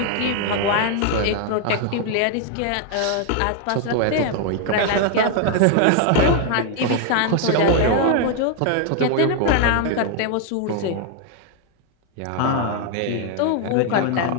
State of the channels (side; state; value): both; different; correlation 0.00